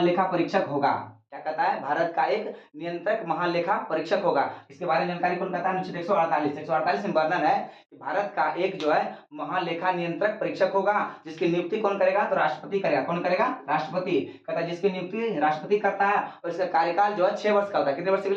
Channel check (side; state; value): both; identical; correlation 1.00